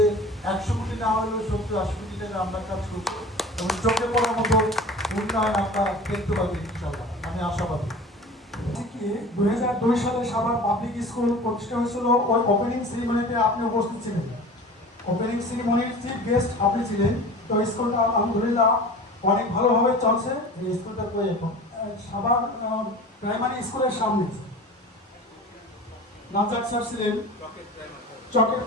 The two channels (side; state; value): both; normal; correlation 0.38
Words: 100 কোটি না হলেও 70-80 কোটি টাকা আমরা কাজ করবো এবং চোখে পড়ার মতো উন্নয়ন আমরা দেখতে পাবো ইনশাআল্লাহ, আমি আশাবাদী। 2002 সালে সাভার পাবলিক স্কুল প্রতিষ্ঠা হয়েছিল। ওই ওপেনিং সেরিমনিতে আপনি উপস্থিত ছিলেন। ওপেনিং সেরিমনির চিফ গেস্ট আপনি ছিলেন। তো স্কুলটা আলহামদুলিল্লাহ অনেক ভালোভাবে চলছে। এই স্কুলটা কই এখন? সাভার প্রাইমারি স্কুলের সামনে নাজাক স্যার ছিলেন, চকের